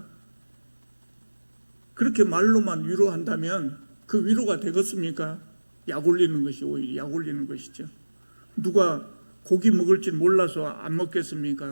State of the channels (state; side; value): inverted; both; correlation -1.00